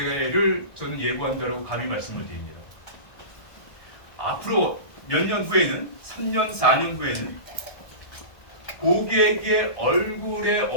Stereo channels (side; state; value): right; late; 1.2 ms